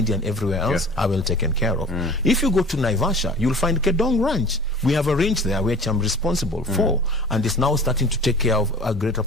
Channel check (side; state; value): both; normal; correlation 0.43